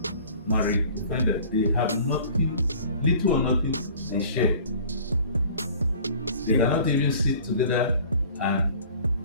marriage, you find that they have nothing, little or nothing they share. They cannot even sit together and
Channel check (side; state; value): both; inverted; correlation -0.47